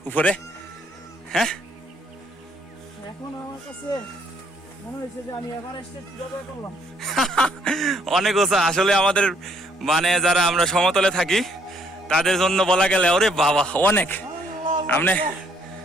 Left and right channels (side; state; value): both; normal; correlation 0.66